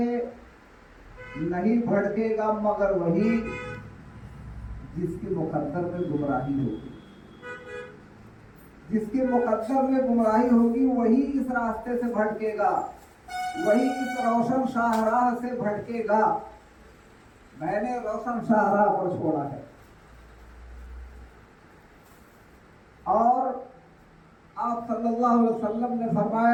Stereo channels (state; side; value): identical; both; correlation 1.00